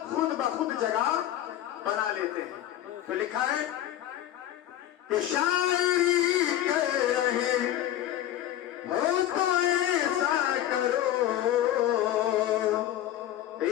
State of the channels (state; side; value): quieter; right; 12.5 dB